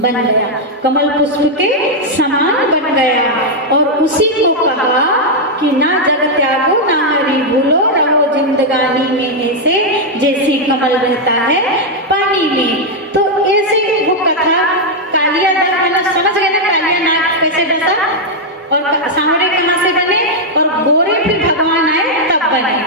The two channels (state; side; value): normal; both; correlation -0.01